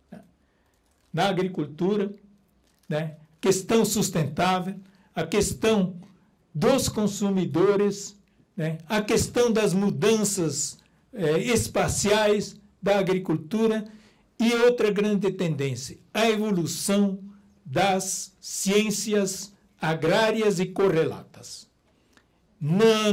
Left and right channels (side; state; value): both; identical; correlation 1.00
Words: na agricultura, né? Questão sustentável, a questão dos consumidores, né? A questão das mudanças espaciais da agricultura e outra grande tendência, a evolução das ciências agrárias e correlatas.